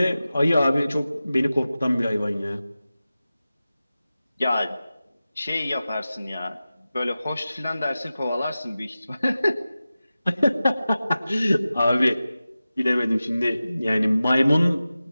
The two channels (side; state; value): both; inverted; correlation -0.95